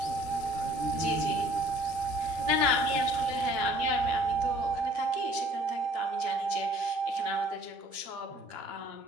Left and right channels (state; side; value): late; left; 12 ms